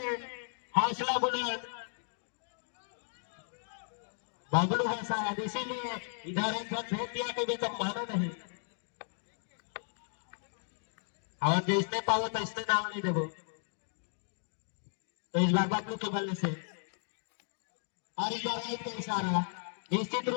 हौसला बुलंद। बबलू है शायद, इसीलिए इधर एक रन भेज दिया कि वे तो माना नहीं। और जो इसने पाओ तो इसने नाम नहीं देवो, तो इस बार बबलू के बल्ले से। और इस बार राइट का इशारा, निश्चित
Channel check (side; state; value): right; silent; digital silence